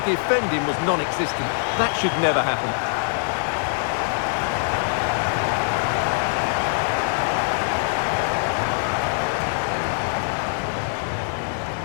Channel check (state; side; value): silent; right; 58 dB below the other